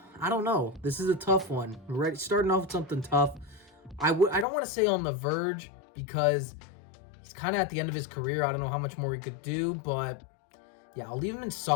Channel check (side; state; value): right; drops out; at 4.5 s